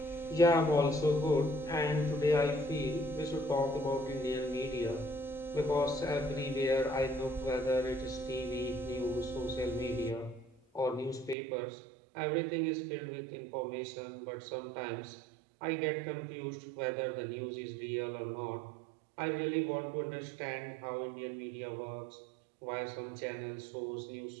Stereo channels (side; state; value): left; drops out; at 11.4 s